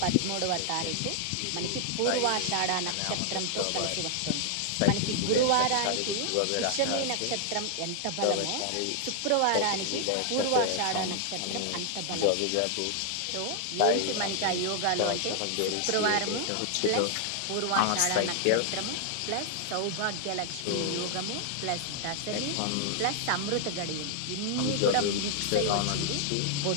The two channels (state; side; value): different; both; correlation 0.00